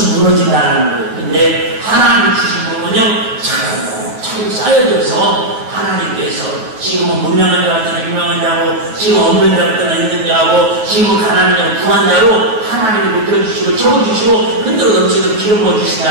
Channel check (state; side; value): late; left; 9.0 ms